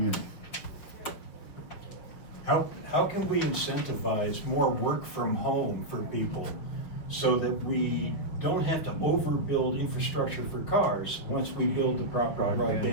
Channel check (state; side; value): late; right; 6.2 ms